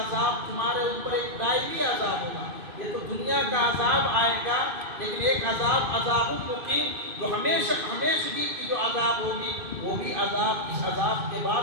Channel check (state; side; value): late; left; 2.5 ms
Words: تمہارے اوپر ایک دائمی عذاب ہوگا. یہ تو دنیا کا عذاب آئے گا، لیکن ایک عذاب مقیم جو ہمیشگی کی جو عذاب ہوگی وہ بھی عذاب، اس عذاب کے